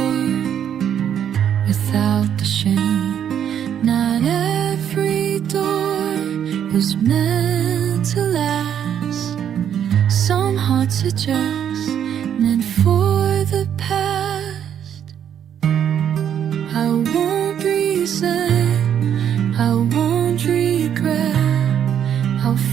without the shame. Not every door was meant to last. Some hearts are just meant for the past. I won't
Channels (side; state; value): left; quieter; 9.2 dB